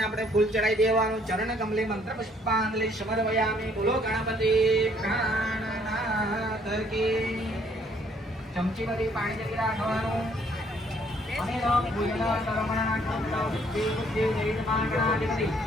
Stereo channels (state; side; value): normal; both; correlation 0.64